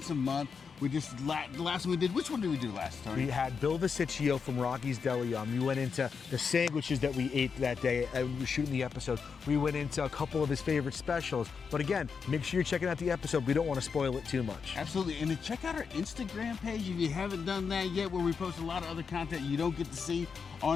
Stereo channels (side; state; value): right; quieter; 5.8 dB